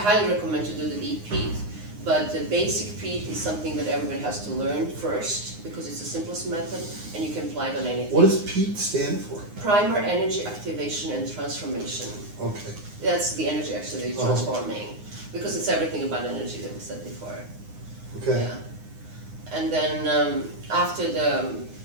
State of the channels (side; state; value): left; late; 9.7 ms